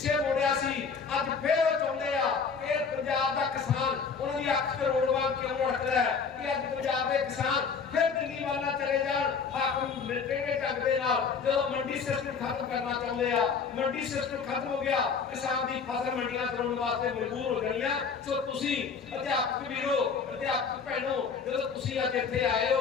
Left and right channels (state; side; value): quieter; right; 5.6 dB